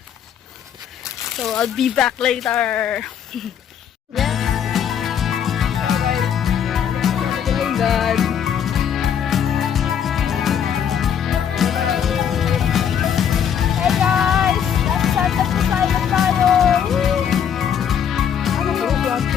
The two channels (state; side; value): quieter; right; 8.5 dB